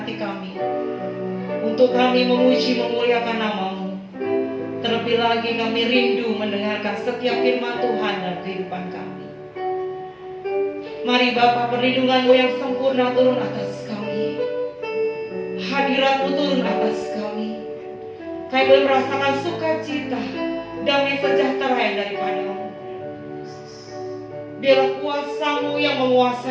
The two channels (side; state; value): both; identical; correlation 1.00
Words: hati kami untuk kami memuji memuliakan nama-Mu. Terlebih lagi kami rindu mendengarkan setiap firman Tuhan dalam kehidupan kami. Mari Bapa, perlindungan-Mu yang sempurna turun atas kami. Hadirat-Mu turun atas kami. Kami boleh merasakan sukacita, damai sejahtera yang daripada-Mu. Biarlah kuasa-Mu yang